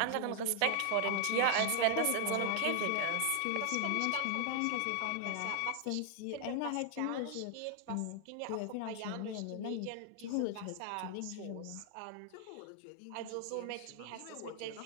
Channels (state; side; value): different; both; correlation 0.00